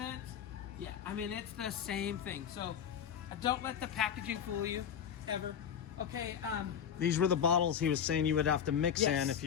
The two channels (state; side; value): quieter; right; 8.5 dB